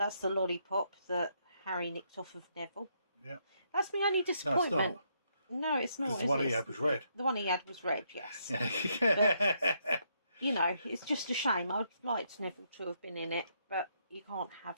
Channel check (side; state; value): both; inverted; correlation -0.75